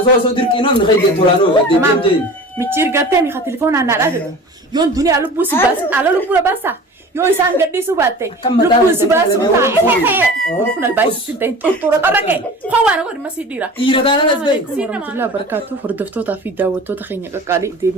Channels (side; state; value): both; normal; correlation 0.39